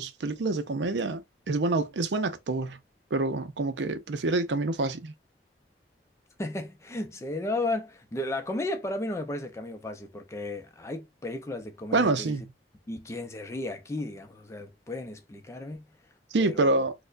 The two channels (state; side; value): normal; both; correlation 0.19